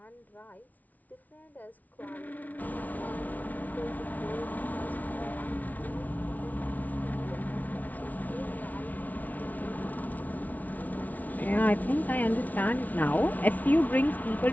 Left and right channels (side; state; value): right; late; 0.076 ms